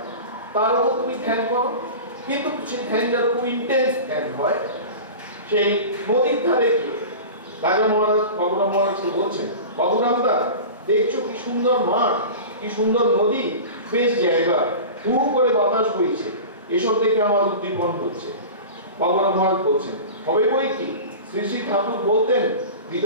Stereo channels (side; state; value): both; inverted; correlation -0.33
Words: তার উপর তুমি ধ্যান করো, কিন্তু সেই ধ্যান যার খুব ইন্টেন্স ধ্যান হয়। সেই নদীর ধারে গিয়ে রাজা মহারাজ বাবুরাম মহারাজকে বলছেন, বাবুরাম দা দেখছো কি সুন্দর মাঠ, কি সুন্দর নদী, বেশ জায়গা, হু করে বাতাস বইছে, এসব দেখে আমার উদ্দীপন হচ্ছে। বাবুরাম মহারাজ বলছেন, হবে বই কি, শ্রী শ্রী ঠাকুর বলতেন